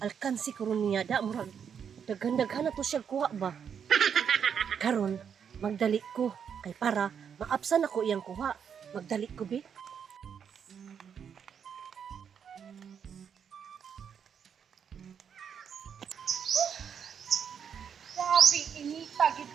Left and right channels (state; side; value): quieter; left; 7.5 dB